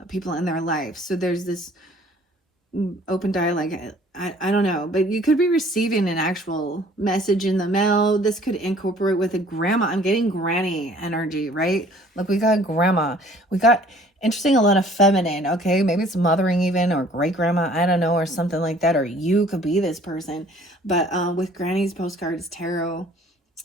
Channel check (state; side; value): normal; both; correlation 0.54